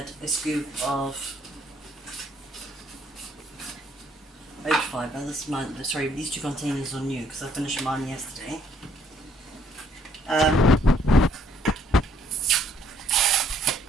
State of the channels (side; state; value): both; normal; correlation 0.66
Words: a scoop of oat fibre. This is mine. Sorry, these 2 containers are new because I finished mine yesterday.